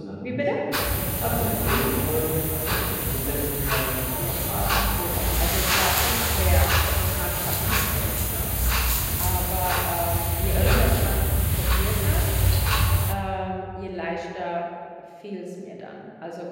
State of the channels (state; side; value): identical; both; correlation 1.00